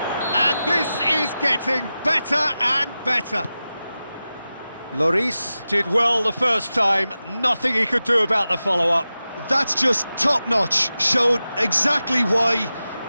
And this is getting better and better. Lloris did well the first time, nothing he could do about the follow-up. That's just top-notch, showed exactly why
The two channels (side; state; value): both; inverted; correlation -0.94